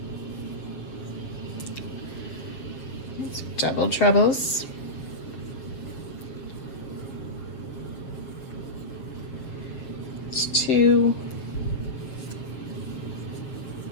Double trebles. It's 2,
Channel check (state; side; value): late; right; 7.7 ms